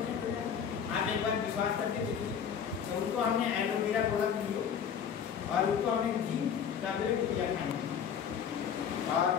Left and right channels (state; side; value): quieter; right; 7.8 dB